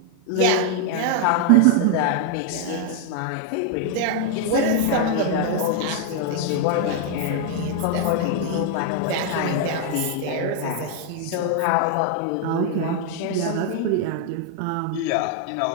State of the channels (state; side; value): different; both; correlation 0.00